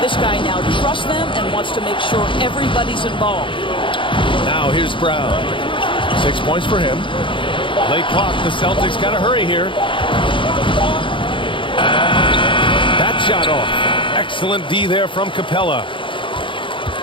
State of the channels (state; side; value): late; right; 0.24 ms